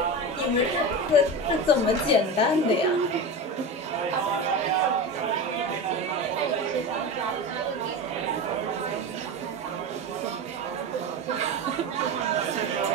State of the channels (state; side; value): normal; both; correlation 0.24